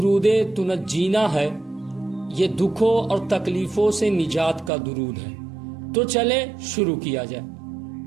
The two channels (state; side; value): drops out; left; at 4.7 s